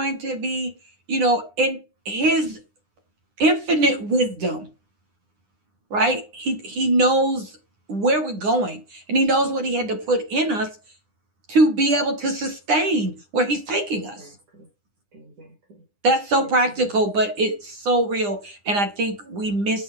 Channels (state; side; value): late; left; 9.9 ms